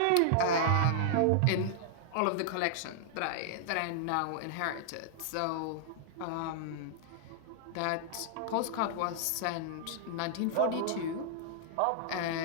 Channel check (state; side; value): different; both; correlation -0.01